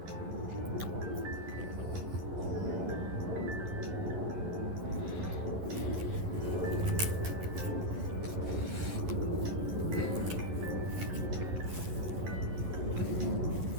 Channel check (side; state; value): left; late; 11 ms